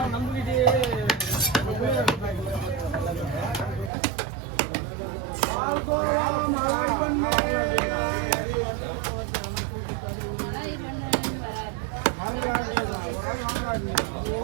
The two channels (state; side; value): drops out; left; at 3.9 s